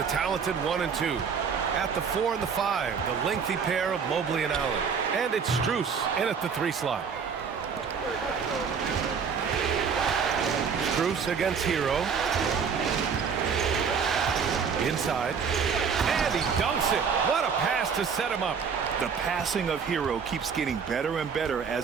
talented 1 and 2. At the 4 and the 5, the lengthy pair of Mobley and Allen. And it's Strus in at the 3 slot. Strus against Hero. Inside. And he dunks it. What a pass to set him up. The passing of Hero keeps getting better and better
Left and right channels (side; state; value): left; quieter; 6.3 dB